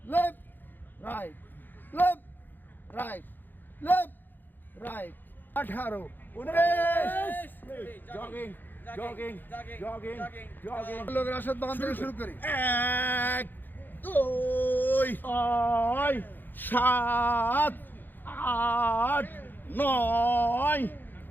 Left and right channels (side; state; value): right; late; 0.090 ms